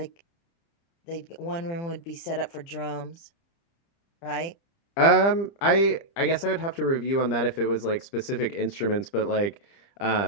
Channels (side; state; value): right; late; 30 ms